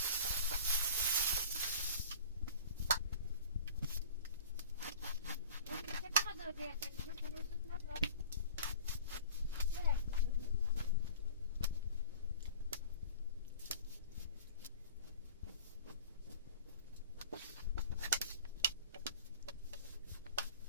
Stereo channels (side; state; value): both; inverted; correlation -0.42